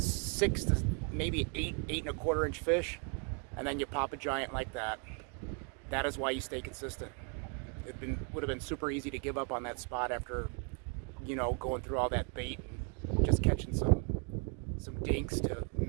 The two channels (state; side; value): quieter; left; 38.4 dB